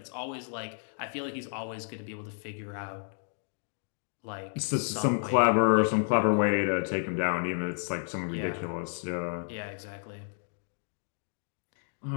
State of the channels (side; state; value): right; silent; digital silence